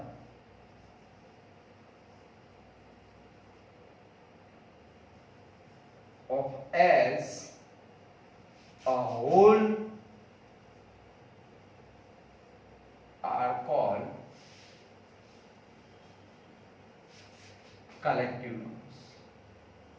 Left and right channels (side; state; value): both; identical; correlation 1.00